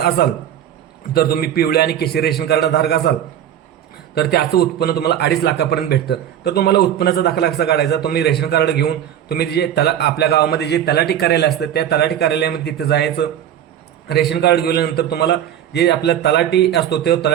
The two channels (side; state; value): left; quieter; 10.4 dB